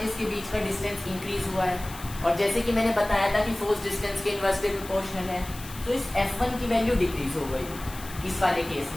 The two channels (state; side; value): noise; left; hiss, 15 dB below the sound